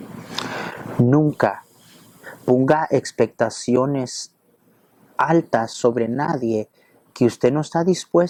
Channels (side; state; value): both; identical; correlation 1.00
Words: Nunca ponga expectaciones altas sobre nadie que usted no está